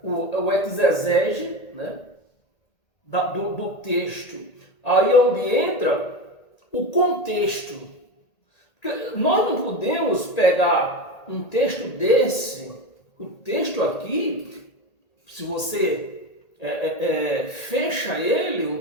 o exegese, né, do texto. Aí onde entra o contexto. Porque nós não podemos pegar um texto desse, o texto aqui, se você fecha ele,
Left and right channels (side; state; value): right; late; 1.8 ms